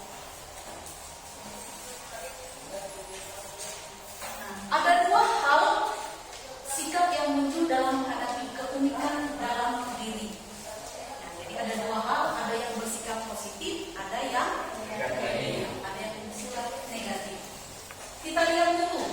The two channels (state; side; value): identical; both; correlation 1.00